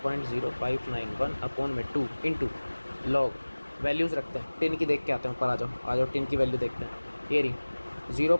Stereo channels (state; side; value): inverted; both; correlation -1.00